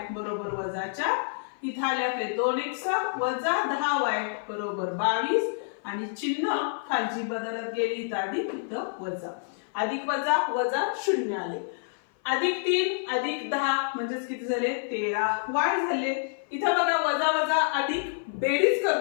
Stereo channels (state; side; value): silent; right; 56 dB below the other